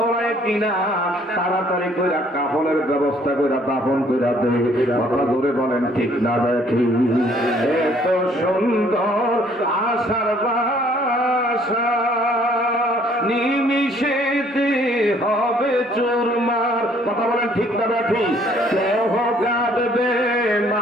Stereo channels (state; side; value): normal; both; correlation 0.61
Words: কিনা। তাড়াতাড়ি করে কাফনের ব্যবস্থা করে দাফন করে দে। কথা ধরে বলেন ঠিক না দেখি? এত সুন্দর আশার বাসা নিমিশেতে হবে চুরমার। কথা বলেন ঠিক না দেখি? কেহ কাঁদবে